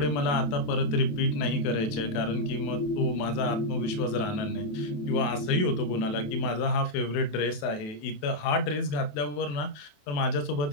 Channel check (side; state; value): right; late; 28 ms